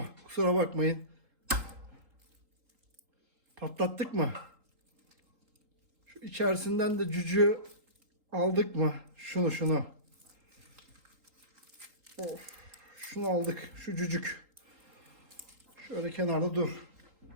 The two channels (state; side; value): late; left; 3.8 ms